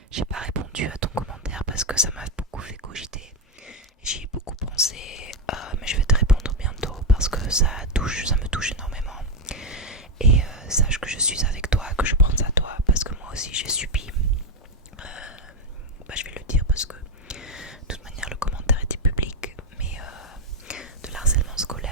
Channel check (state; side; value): normal; both; correlation 0.07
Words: J'ai pas répondu à ton commentaire parce que ça m'a beaucoup fait cogiter. J'y ai beaucoup pensé, mais je vais te répondre bientôt parce que ça me touche énormément. Et sache que je suis avec toi, que je pense à toi, parce que moi aussi j'ai subi. Je vais le dire parce que de toute manière le commentaire était public, mais de l'harcèlement